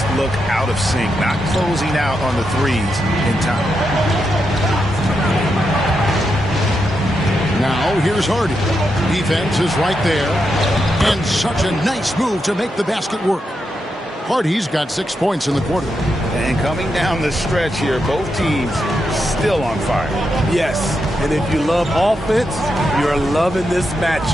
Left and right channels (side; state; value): both; normal; correlation 0.84